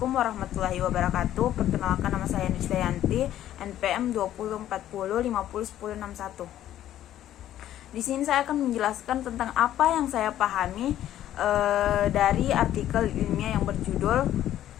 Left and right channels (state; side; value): quieter; right; 12.3 dB